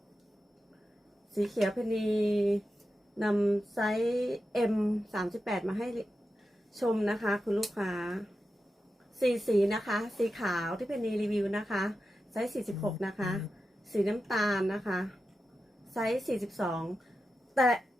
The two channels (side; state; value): both; normal; correlation 0.91